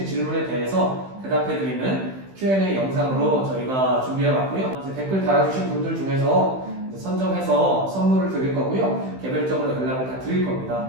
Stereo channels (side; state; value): left; late; 15 ms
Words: 질문에 대해서 대답해드리는 Q&A 영상으로 저희가 준비해봤고요. 이제 댓글 달아주신 분들 중에서 이제 선정해서 선물을 드릴 거고요. 개별적으로 연락을 다 드릴